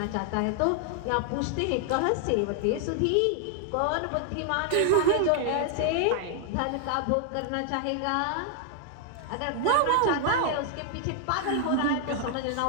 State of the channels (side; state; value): both; different; correlation 0.00